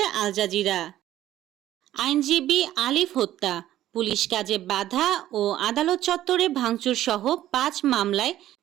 আল জাজিরা। আইনজীবী আলিফ হত্যা, পুলিশ কাজে বাধা ও আদালত চত্বরে ভাঙচুর সহ ৫ মামলায়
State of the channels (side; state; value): left; quieter; 13.3 dB